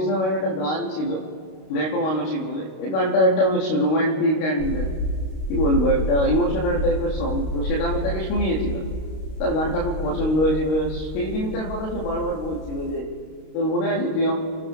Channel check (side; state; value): right; late; 32 ms